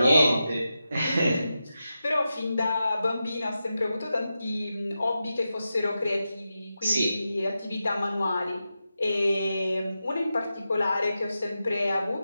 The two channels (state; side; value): inverted; both; correlation -0.90